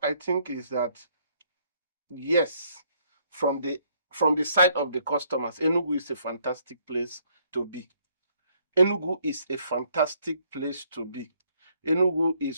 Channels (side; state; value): both; inverted; correlation -0.67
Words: I think is that, yes, from the side of the customers, Enugu is a fantastic place to be. Enugu is a fantastic place to be. Enugu